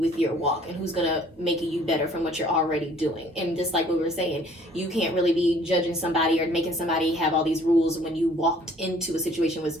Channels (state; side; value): normal; both; correlation 0.56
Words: your walk and who's going to make you better from what you're already doing. And just like we were saying, you can't really be judging somebody or making somebody have all these rules when you walked into a situation where this